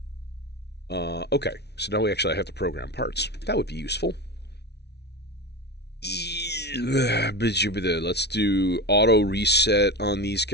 Okay, so now we actually have to program parts. That would be useful. Let's do auto reset on these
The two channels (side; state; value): right; late; 0.49 ms